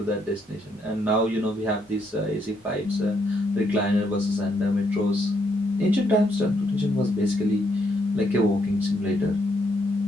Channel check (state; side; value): normal; both; correlation 0.75